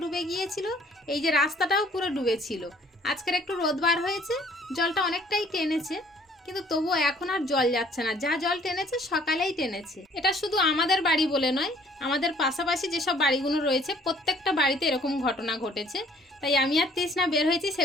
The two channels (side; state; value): both; normal; correlation 0.58